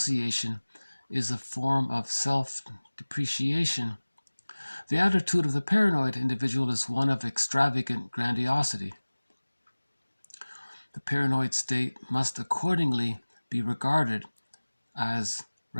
is a form of self-depreciation, the attitude of the paranoid individual is one of extravagant grandiosity. The paranoid state must accordingly be regarded as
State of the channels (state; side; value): inverted; both; correlation -1.00